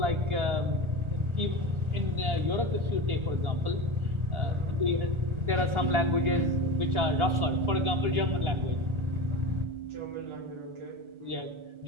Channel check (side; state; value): left; late; 1.4 ms